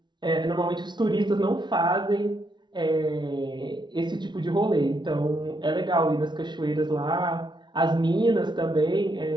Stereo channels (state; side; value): late; left; 0.22 ms